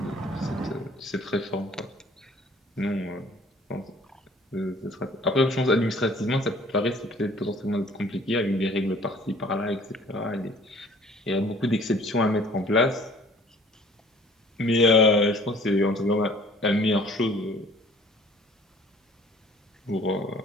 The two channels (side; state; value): both; normal; correlation 0.53